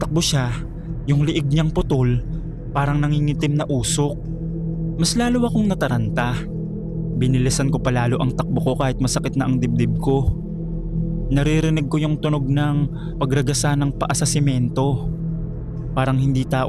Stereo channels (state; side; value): identical; both; correlation 1.00